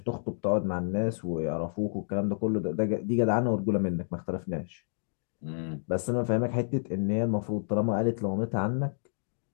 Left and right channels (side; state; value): right; silent; digital silence